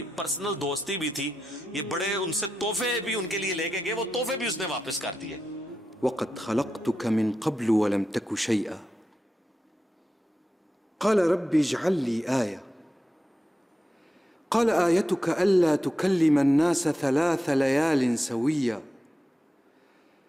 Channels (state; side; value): normal; both; correlation 0.89